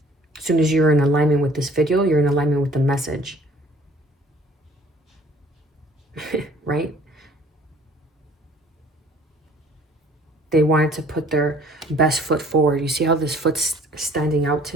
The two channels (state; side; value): normal; both; correlation 0.55